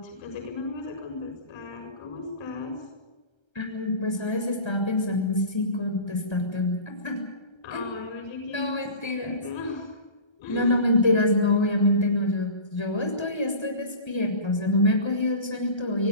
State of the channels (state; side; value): late; right; 1.3 ms